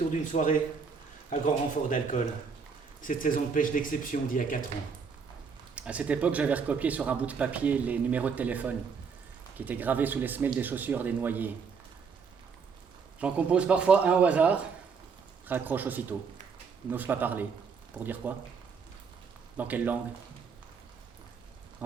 d'une soirée, à grand renfort d'alcool. Cette saison de pêche d'exception d'il y a 4 ans. À cette époque, j'avais recopié sur un bout de papier les numéros de téléphone qui étaient gravés sous les semelles des chaussures des noyés. J'en compose parfois un au hasard, raccroche aussitôt, n'ose pas parler. Pour dire quoi? Dans quelle langue?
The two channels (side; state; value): left; quieter; 5.7 dB